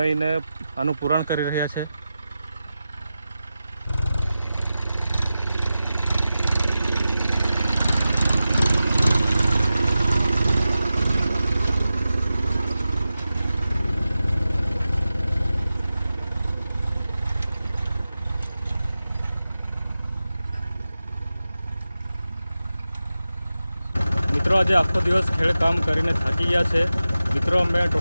આનું પુરાણ કરી રહ્યા છે। મિત્રો આજે આખો દિવસ ખેડકામ કરીને થાકી ગયા છે। મિત્રો અમે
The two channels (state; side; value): inverted; both; correlation -0.93